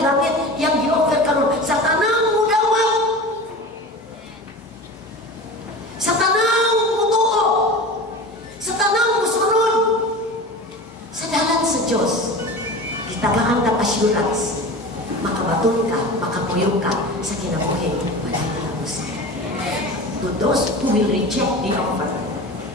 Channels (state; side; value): normal; both; correlation 0.33